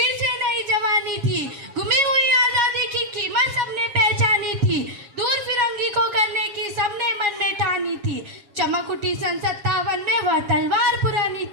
से नई जवानी थी। गुमी हुई आजादी की कीमत सबने पहचानी थी, दूर फिरंगी को करने की सबने मन में ठानी थी। चमक उठी सन 57 में वह तलवार पुरानी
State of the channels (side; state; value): left; late; 7.2 ms